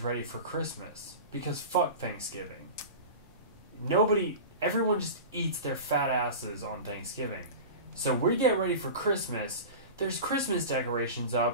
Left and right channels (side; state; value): both; inverted; correlation -0.31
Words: ready for Christmas. Because fuck Thanksgiving. Everyone just eats their fat asses on Thanksgiving. So we get ready for Christmas. There's Christmas decorations